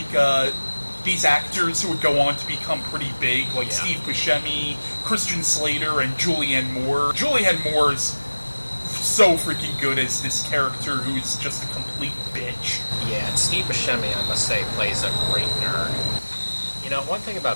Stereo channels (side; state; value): both; inverted; correlation -1.00